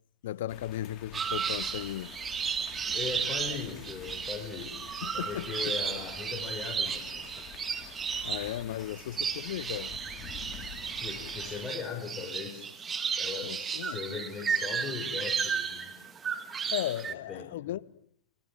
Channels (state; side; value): normal; both; correlation 0.47